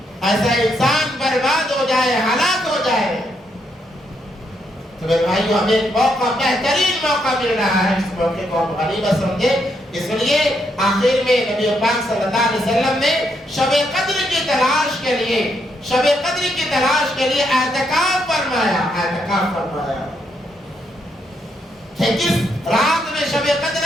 ایسا انسان برباد ہو جائے، ہلاک ہو جائے۔ تو میرے بھائیو ہمیں ایک موقع، بہترین موقع مل رہا ہے، اس موقع کو ہم غنیمت سمجھے، اس لیے آخر میں نبی پاک صلی اللہ علیہ وسلم نے شب قدر کی تلاش کے لیے، شب قدر کی تلاش کے لیے اعتکاف فرمایا، اعتکاف فرمایا کہ کس رات میں شب قدر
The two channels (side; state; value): both; normal; correlation 0.77